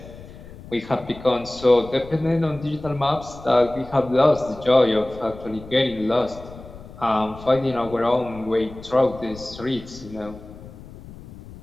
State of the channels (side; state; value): left; noise; rumble, 17 dB below the sound